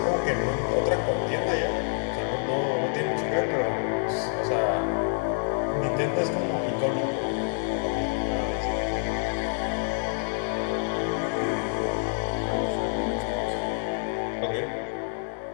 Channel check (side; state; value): right; silent; 60 dB below the other